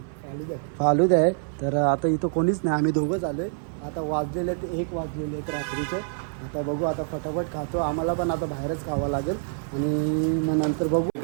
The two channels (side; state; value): left; silent; 61 dB below the other